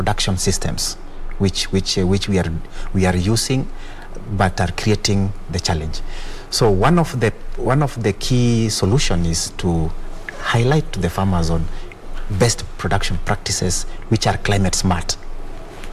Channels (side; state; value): both; identical; correlation 1.00